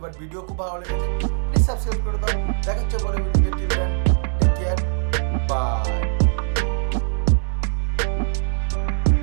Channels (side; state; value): left; silent; digital silence